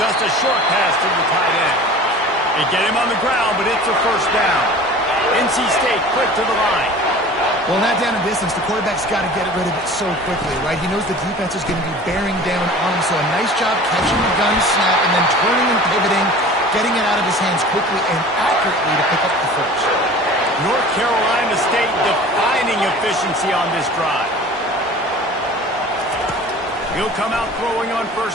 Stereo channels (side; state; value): both; normal; correlation 0.42